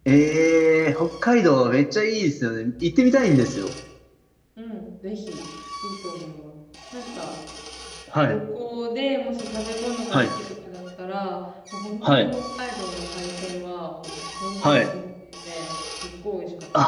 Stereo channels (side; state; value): both; identical; correlation 1.00